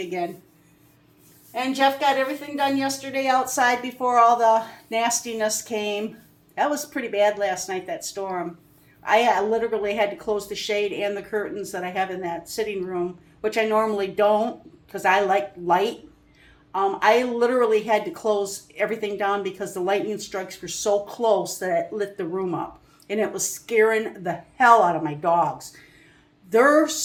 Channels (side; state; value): both; identical; correlation 1.00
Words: again. And Jeff got everything done yesterday outside before all the nastiness came. That was pretty bad last night, that storm. I literally had to close the shade and the curtains that I have in that sitting room, which I normally don't because I like light. I literally had to close everything down because the lightning strikes were so close that it lit the room up. And it was scaring the hell out of my dogs. They're